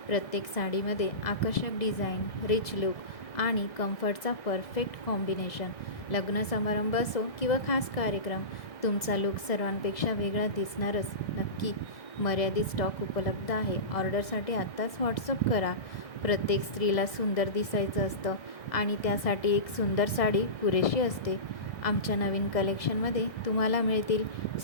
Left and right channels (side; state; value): right; late; 1.6 ms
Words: प्रत्येक साडीमध्ये आकर्षक डिझाईन, रिच लुक आणि कम्फर्टचा परफेक्ट कॉम्बिनेशन. लग्न समारंभ असो किंवा खास कार्यक्रम, तुमचा लुक सर्वांपेक्षा वेगळा दिसणारच नक्की. मर्यादित स्टॉक उपलब्ध आहे. ऑर्डरसाठी आत्ताच व्हॉट्सअप करा. प्रत्येक स्त्रीला सुंदर दिसायचं असतं आणि त्यासाठी एक सुंदर साडी पुरेशी असते. आमच्या नवीन कलेक्शनमध्ये तुम्हाला मिळतील